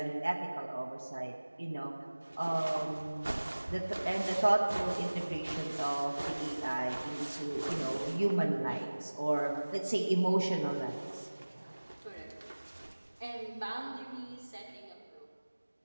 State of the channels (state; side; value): inverted; both; correlation -1.00